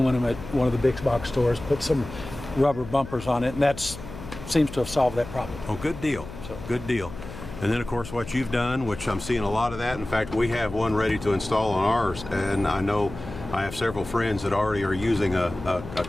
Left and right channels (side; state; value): left; noise; hum, 13 dB below the sound